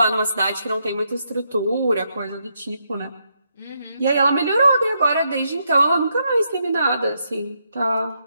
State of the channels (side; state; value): both; inverted; correlation -0.79